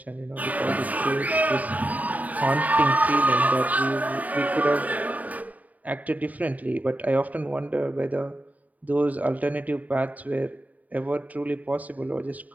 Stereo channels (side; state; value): left; late; 0.074 ms